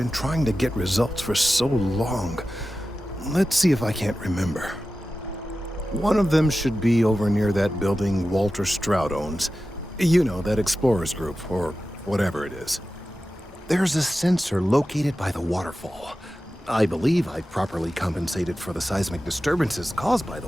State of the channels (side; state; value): both; normal; correlation 0.94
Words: trying to get results for so long. Let's see if I can't remember. One of them should be over near that building Walter Stroud owns. You know, that explorers group, or whatever it is. There's a sensor located by the waterfall. I believe I properly compensated for the seismic disturbances caused by the